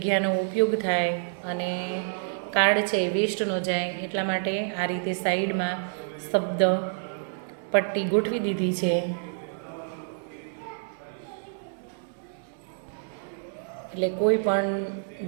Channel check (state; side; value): silent; left; digital silence